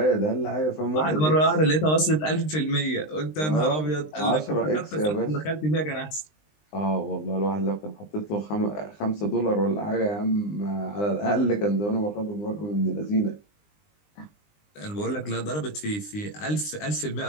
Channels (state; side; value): late; right; 20 ms